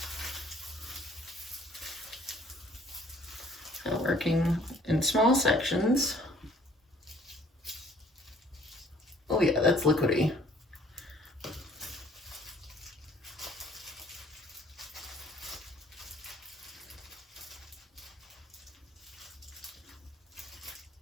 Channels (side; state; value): both; normal; correlation 0.57